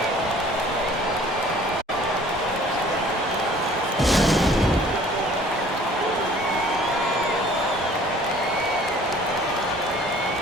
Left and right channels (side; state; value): both; normal; correlation 0.52